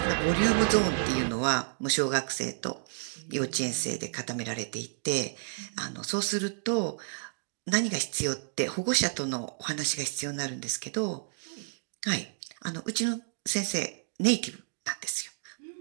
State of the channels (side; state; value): left; silent; digital silence